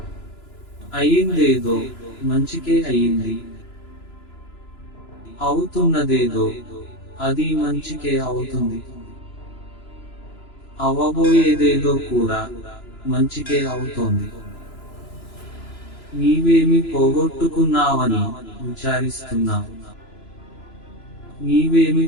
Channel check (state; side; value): late; right; 3.0 ms